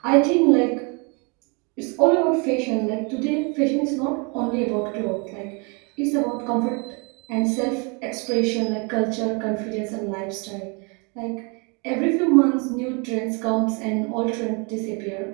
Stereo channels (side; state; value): left; quieter; 32.6 dB